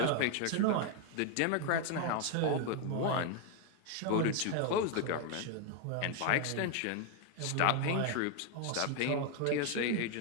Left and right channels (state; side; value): different; both; correlation 0.01